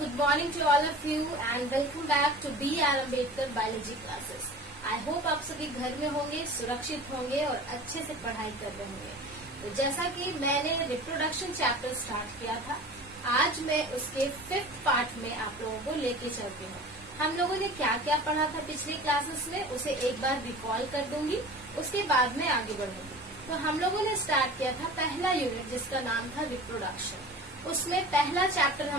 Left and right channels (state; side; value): normal; both; correlation 0.38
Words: morning to all of you and welcome back to B.R. Ambedkar Biology classes. I hope आप सभी घर में होंगे, सुरक्षित होंगे और अच्छे से पढ़ाई कर रहे होंगे। तो जैसा कि मैंने रिप्रोडक्शन चैप्टर स्टार्ट किया था, आज मैं उसके 5th पार्ट में आप लोगों को लेके चलती हूँ। हम लोगों ने क्या क्या पढ़ा था पिछले क्लासेस में, उसे एक बार रिकॉल कर दूंगी, उसके बाद में आगे बढ़ूंगी। तो हम लोगों ने स्टार्ट किया था पहला यूनिट जिसका नाम था रिप्रोडक्शन। उसमें पहला चैप्टर